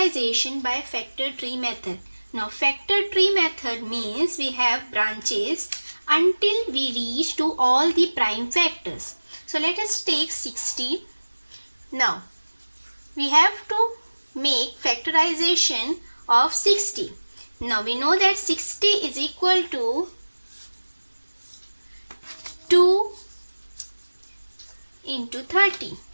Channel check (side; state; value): both; inverted; correlation -1.00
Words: by factor tree method. Now factor tree method means we have branches until we reach to all the prime factors. So let us take 60. Now we have to make factorization of 60. Now we know that 60 is equal to 2 into 30.